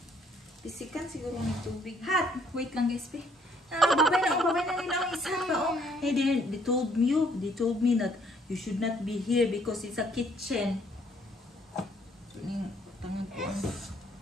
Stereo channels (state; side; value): normal; both; correlation 0.65